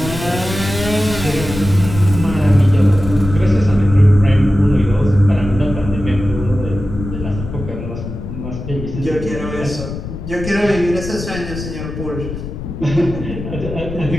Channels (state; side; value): noise; left; rumble, 8 dB below the sound